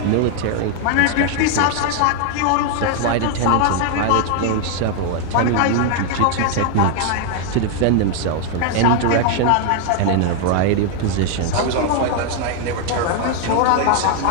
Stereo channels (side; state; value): both; different; correlation 0.00